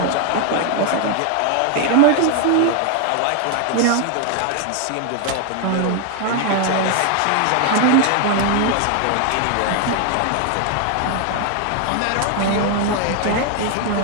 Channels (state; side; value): different; both; correlation 0.01